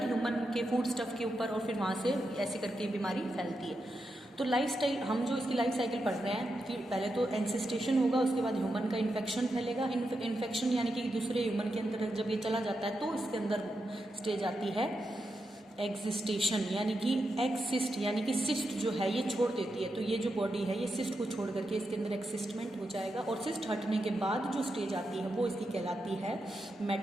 ह्यूमन के फूड स्टफ के ऊपर, और फिर वहाँ से ऐसे करके बीमारी फैलती है। तो लाइफ स्टाइल, हम जो इसकी लाइफ साइकिल पढ़ रहे हैं कि पहले तो एनसिस्टेशन होगा, उसके बाद ह्यूमन का इन्फेक्शन फैलेगा। इन्फेक्शन यानी कि दूसरे ह्यूमन के अंदर जब ये चला जाता है तो इसके अंदर स्टेज आती है एग्जिस्टेशन, यानी कि एक्सिस्ट, यानी कि सिस्ट जो है ये छोड़ देती है। तो ये जो बॉडी है ये सिस्ट को छोड़ करके इसके अंदर एक्सिस्टमेंट हो जाएगा, और सिस्ट हटने के बाद जो स्टेज आती है वो इसकी कहलाती है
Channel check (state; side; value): normal; both; correlation 0.86